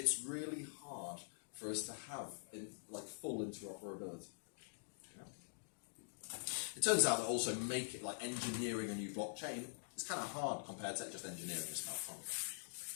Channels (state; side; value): silent; right; digital silence